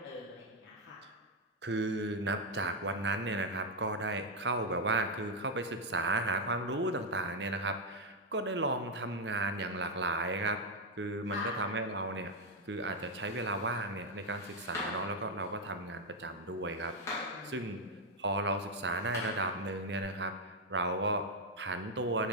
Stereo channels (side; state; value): both; normal; correlation 0.02